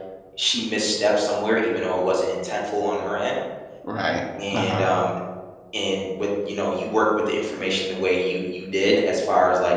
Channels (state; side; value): identical; both; correlation 1.00